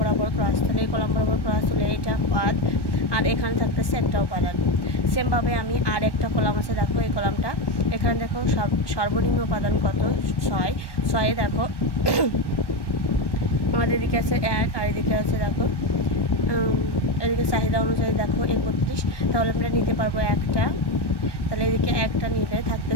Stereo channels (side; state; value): right; late; 1.1 ms